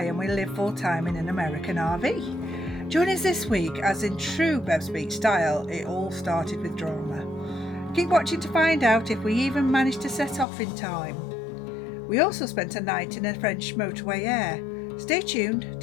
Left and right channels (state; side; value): drops out; right; at 10.5 s